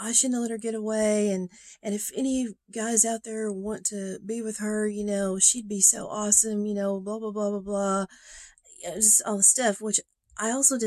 shouldn't let her get away. And if any guys out there want to be with her, she'd be so awesome, blah, blah, blah, blah, blah. Just all the stuff, which I also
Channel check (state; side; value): identical; both; correlation 1.00